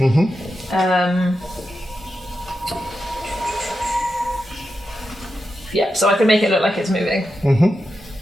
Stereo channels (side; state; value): both; normal; correlation 0.88